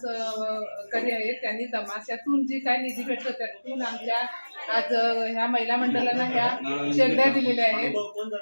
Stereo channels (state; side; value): inverted; both; correlation -1.00